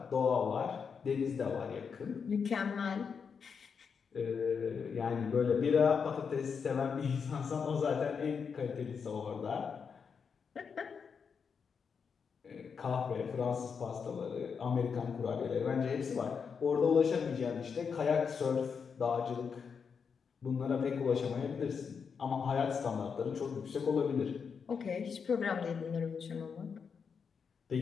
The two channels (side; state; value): right; quieter; 6.1 dB